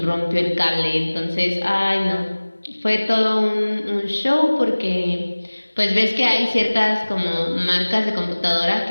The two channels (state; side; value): inverted; both; correlation -1.00